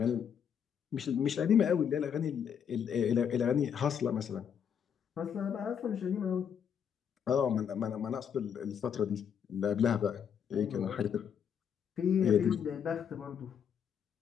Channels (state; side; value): quieter; right; 7.9 dB